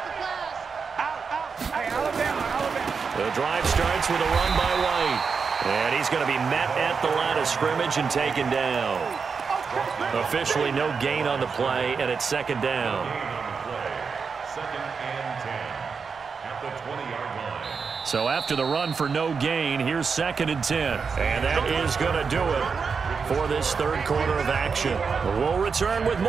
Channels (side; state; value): left; quieter; 5.5 dB